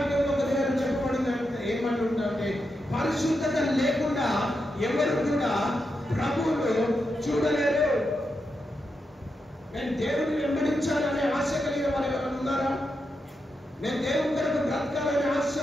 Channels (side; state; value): both; normal; correlation 0.86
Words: ఒక దగ్గర చెప్పబడింది, ఏమంటుంటే పరిశుద్ధత లేకుండా ఎవరు కూడా ప్రభువును చూడలేరు. నేను దేవుని వెంబడించాలనే ఆశ కలిగిన వారు ఎవరైనా ఉన్నారా? నేను దేవుని కొరకు బ్రతకాలనే ఆశ